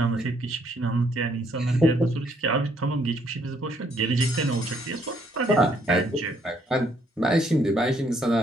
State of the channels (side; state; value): both; normal; correlation 0.69